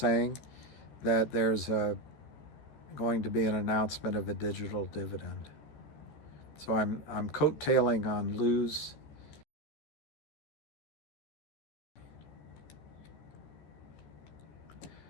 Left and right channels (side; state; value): right; late; 13 ms